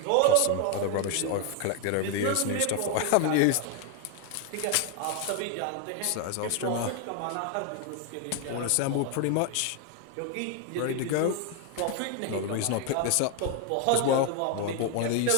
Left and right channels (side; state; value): both; different; correlation 0.01